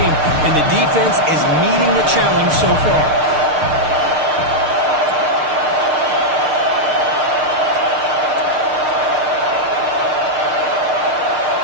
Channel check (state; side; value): late; left; 6.6 ms